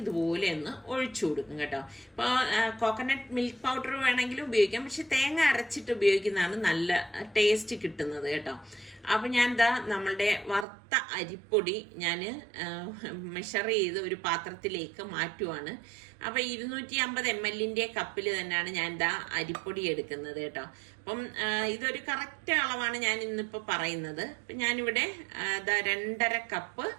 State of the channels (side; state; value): left; drops out; at 10.7 s